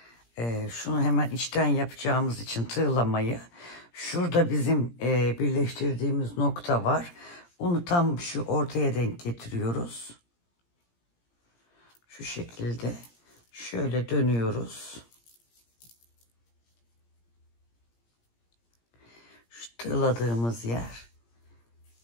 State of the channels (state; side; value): late; right; 17 ms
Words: şunu hemen içten yapacağımız için tığlamayı, şurada bizim birleştirdiğimiz nokta var. Onu tam şu ortaya denk getiriyoruz. Şu şekilde şöyle dönüyoruz. Şu tığladığımız yer.